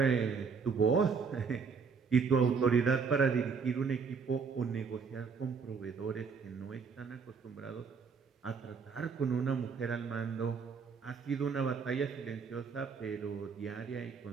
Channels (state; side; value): quieter; left; 5.5 dB